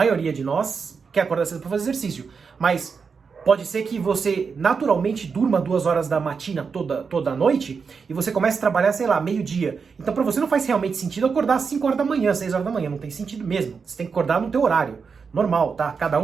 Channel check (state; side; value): quieter; left; 5.5 dB